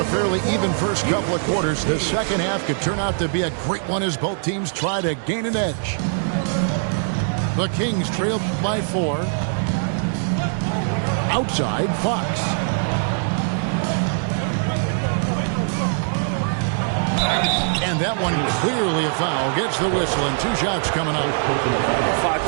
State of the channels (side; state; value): left; silent; digital silence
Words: fairly even first couple of quarters, the second half could turn out to be a great one as both teams try to gain an edge. The Kings trailed by 4. Outside, Fox. And that one clearly a foul. Gets the whistle and 2 shots coming up. Fox